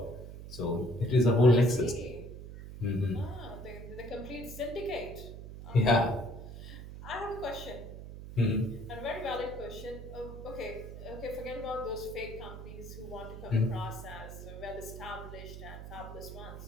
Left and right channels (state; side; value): noise; right; hum, 11 dB below the sound